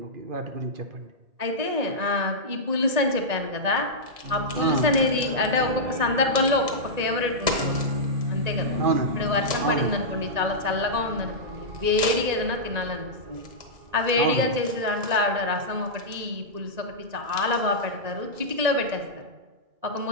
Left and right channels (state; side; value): late; left; 1.9 ms